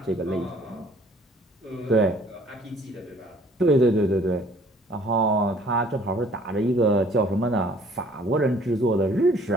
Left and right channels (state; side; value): normal; both; correlation 0.56